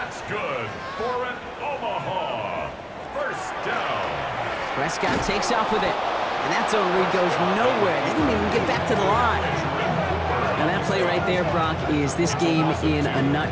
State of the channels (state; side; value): identical; both; correlation 1.00